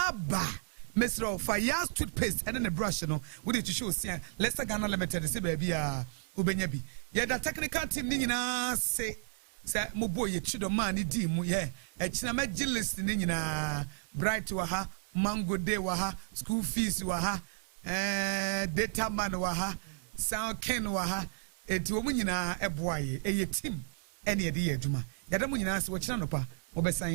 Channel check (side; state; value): left; silent; 56 dB below the other